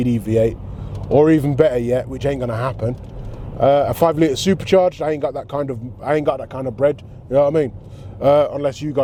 V8, or even better yet, which ain't gonna happen, a 5 litre supercharged. I ain't got that kind of bread. You know what I mean? Unless you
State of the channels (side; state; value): both; identical; correlation 1.00